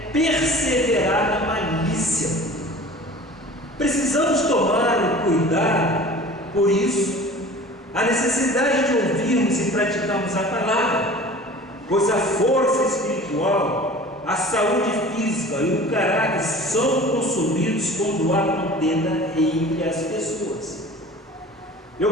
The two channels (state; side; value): normal; both; correlation 0.42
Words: perseverar na malícia. Precisamos tomar cuidado, por isso, a necessidade de ouvirmos e praticarmos a palavra, pois a força espiritual, a saúde física e o caráter são consumidos quando há contenda entre as pessoas.